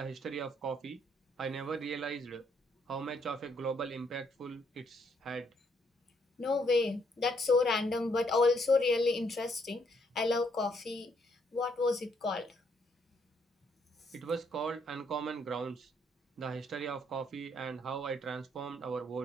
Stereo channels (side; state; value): both; normal; correlation 0.71